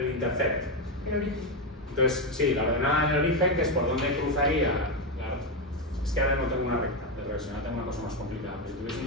intercept. El origen. Entonces, sí, la ordenada en el origen, que es por donde cruzaría. Es que ahora no tengo una recta de regresión, ahora tengo una cosa más complicada. Pero si tuviese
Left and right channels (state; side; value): normal; both; correlation 0.09